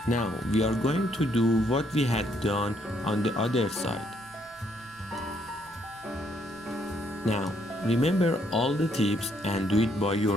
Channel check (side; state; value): right; noise; hum, 28 dB below the sound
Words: Now we are going to do what we had done on the other side. Now remember all the tips and do it by